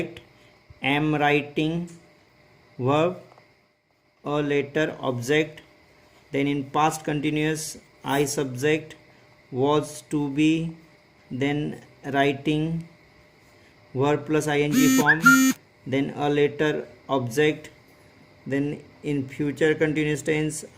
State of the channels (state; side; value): identical; both; correlation 1.00